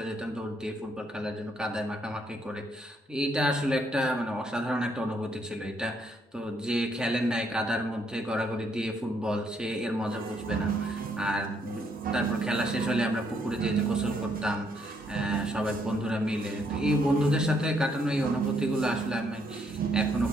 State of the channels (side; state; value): both; normal; correlation 0.72